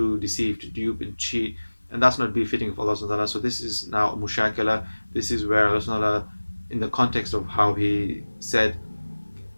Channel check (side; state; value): both; inverted; correlation -1.00